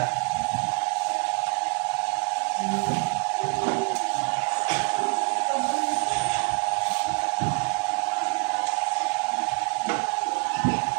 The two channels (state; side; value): quieter; left; 38.1 dB